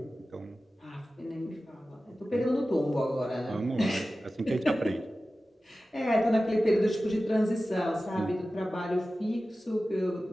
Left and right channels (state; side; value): normal; both; correlation 0.95